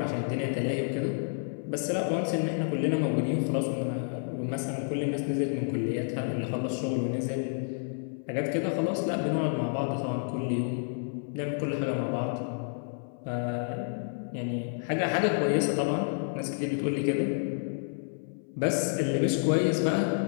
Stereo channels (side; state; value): right; silent; 58 dB below the other